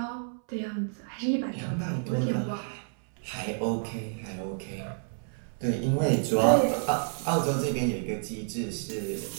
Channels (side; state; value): left; silent; 58 dB below the other